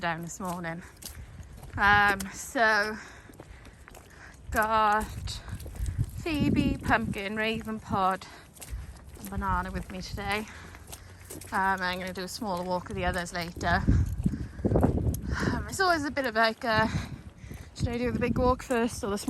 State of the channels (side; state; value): both; identical; correlation 1.00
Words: this morning. So got Phoebe, Pumpkin, Raven Pod and Banana with me today. I'm going to do a smaller walk with the others later. It's always a bit of like should I do the big walk first or the